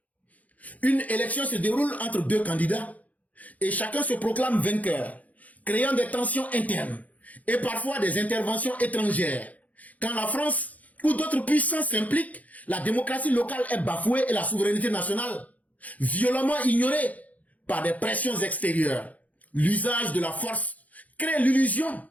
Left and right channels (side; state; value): right; late; 0.074 ms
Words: Une élection se déroule entre deux candidats et chacun se proclame vainqueur, créant des tensions internes et parfois des interventions étrangères. Quand la France ou d'autres puissances s'impliquent, la démocratie locale est bafouée et la souveraineté nationale violemment ignorée par des pressions extérieures. L'usage de la force crée l'illusion